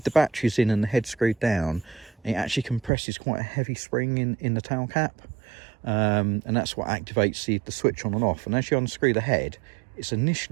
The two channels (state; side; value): drops out; left; at 2.9 s